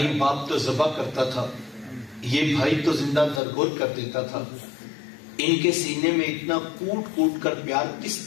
باپ تو ذبح کرتا تھا، یہ بھائی تو زندہ درگور کر دیتا تھا۔ ان کے سینے میں اتنا کوٹ کوٹ کر پیار کس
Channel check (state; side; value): drops out; right; at 3.4 s